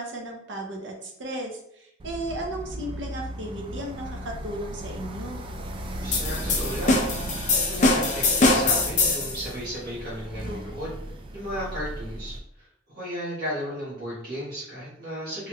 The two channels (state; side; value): normal; both; correlation 0.30